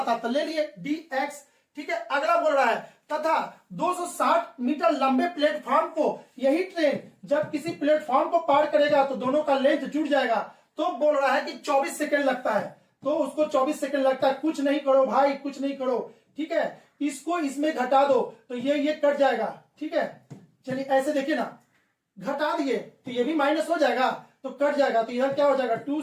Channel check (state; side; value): identical; both; correlation 1.00